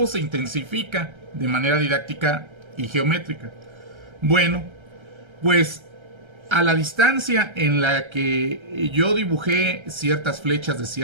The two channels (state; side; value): late; left; 1.3 ms